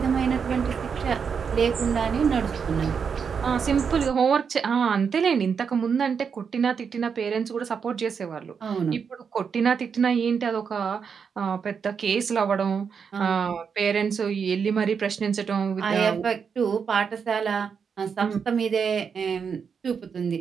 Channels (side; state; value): left; quieter; 6.4 dB